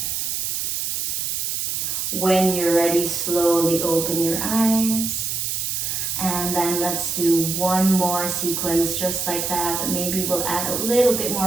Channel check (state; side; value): noise; right; hiss, 1 dB below the sound